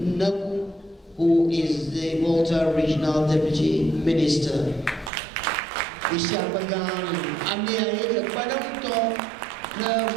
who is the Malta Regional Deputy Minister. Isyapagan amiaya padang to na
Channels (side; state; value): left; drops out; at 5.1 s